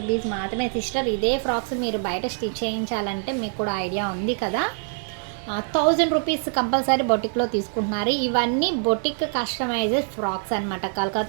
మాత్రమే సిస్టర్. ఇదే ఫ్రాక్స్ మీరు బయట స్టిచ్ చేయించాలంటే మీకు కూడా ఐడియా ఉంది కదా, 1000 రూపీస్ కంపల్సరీ బొటిక్లో తీసుకుంటున్నారు. ఇవన్నీ బొటిక్ కస్టమైజ్డ్ ఫ్రాక్స్ అనమాట,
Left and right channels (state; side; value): silent; left; 59 dB below the other